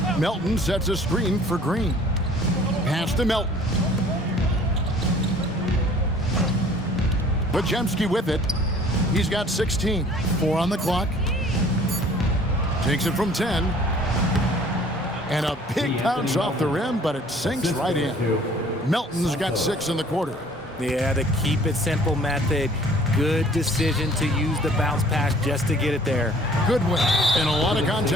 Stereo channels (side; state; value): both; normal; correlation 0.52